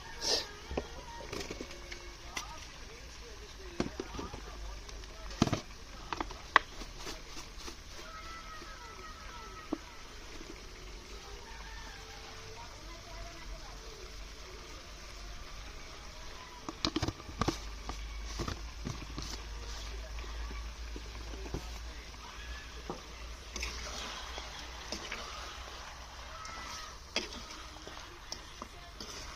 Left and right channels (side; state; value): both; identical; correlation 1.00